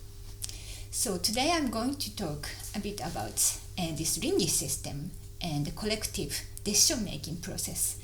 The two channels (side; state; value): both; identical; correlation 1.00